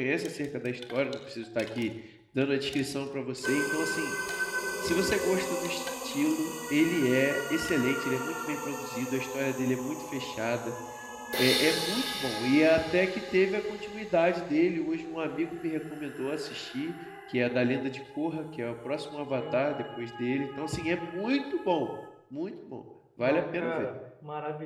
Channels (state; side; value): identical; both; correlation 1.00